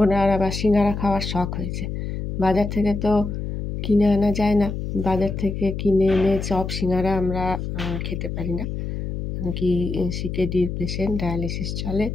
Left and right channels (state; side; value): noise; left; hum, 5 dB below the sound